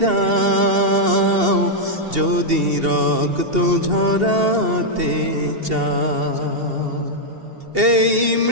যদি রক্ত ঝরাতে চাও, এই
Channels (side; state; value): left; late; 2.7 ms